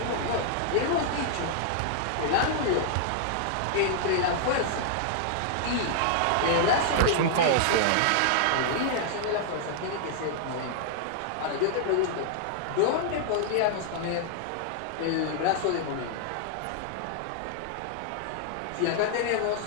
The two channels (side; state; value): both; different; correlation -0.01